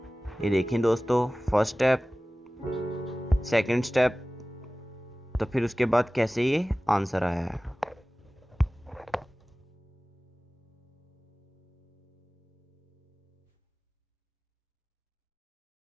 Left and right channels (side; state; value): both; normal; correlation 0.97